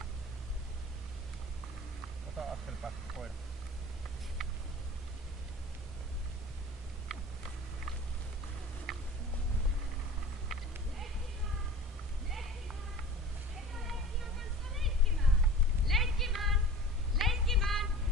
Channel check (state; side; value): normal; both; correlation 0.39